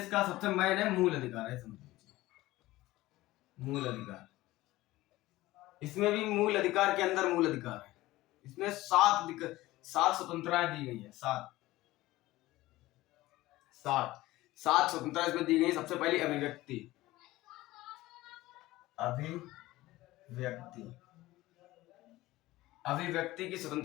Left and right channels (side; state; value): right; quieter; 17.7 dB